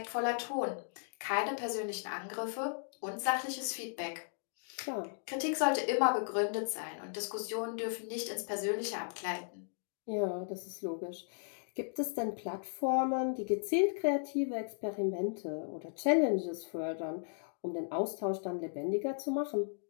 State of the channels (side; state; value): right; silent; digital silence